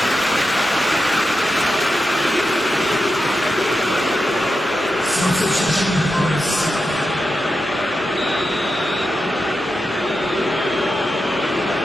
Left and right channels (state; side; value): normal; both; correlation 0.89